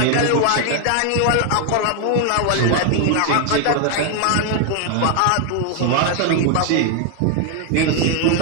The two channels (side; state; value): both; different; correlation 0.00